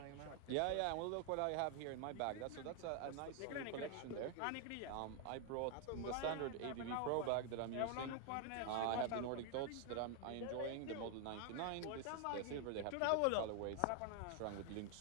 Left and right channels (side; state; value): both; different; correlation 0.00